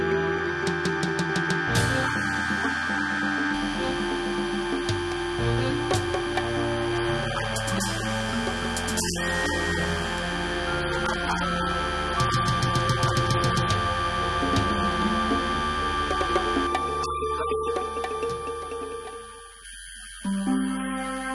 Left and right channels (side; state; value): both; identical; correlation 1.00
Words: big liability to me. And so stop bothering my life. Don't call me anytime I'm in my office. This is where I make my money that I spend on you. So allow me to concentrate on my business. Please. Don't call me again. Please,